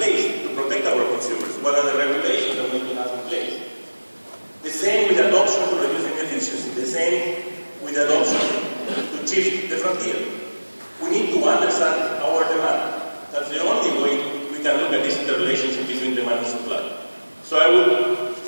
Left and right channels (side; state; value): both; inverted; correlation -1.00